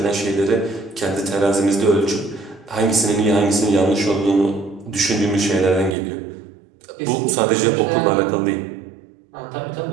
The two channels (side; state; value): left; drops out; at 6.0 s